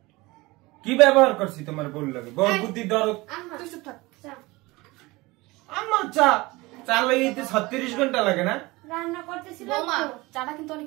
কি ব্যবহার করছি তোমার বল লাগে? বল বুদ্ধি দরদ। তুই চুপ থাক। আমার চা চা লাগাইতে 36 ঘন্টা লাগে না? রান্না করতেছিলাম বৌমা, তো। চাটা কিন্তু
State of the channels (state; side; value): quieter; left; 22.0 dB